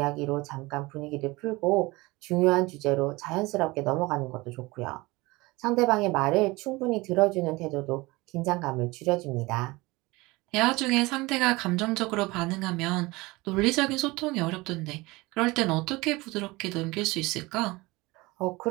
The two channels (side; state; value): left; quieter; 22.3 dB